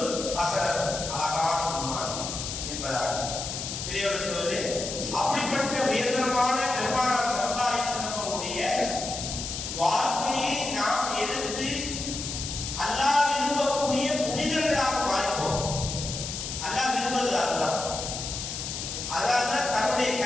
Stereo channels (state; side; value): noise; left; hiss, 5 dB below the sound